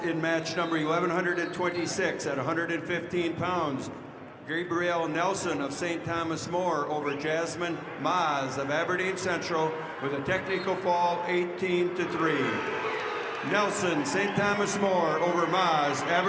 in match number 1126 at 115 pounds. Gabrielle Nelson of St. Thomas More over Jasmine Maz of Aberdeen Central with a technical fall 18-3. Nelson, St. Thomas More over Maz,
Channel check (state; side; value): identical; both; correlation 1.00